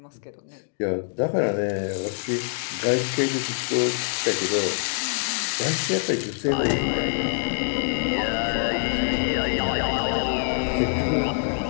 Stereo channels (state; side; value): silent; right; digital silence